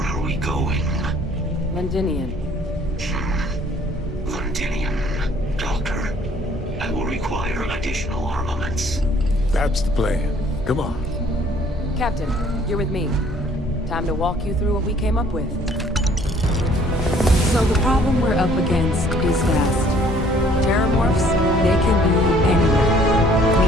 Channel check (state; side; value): normal; both; correlation 0.58